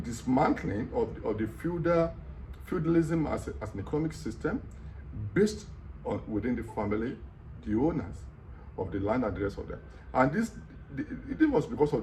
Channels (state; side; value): identical; both; correlation 1.00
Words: dismantling of the feudalism as an economic system based on within the family, the owners of the land and the rest of them. And it was because